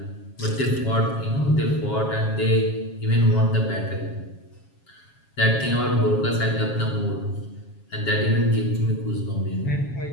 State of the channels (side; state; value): right; late; 7.3 ms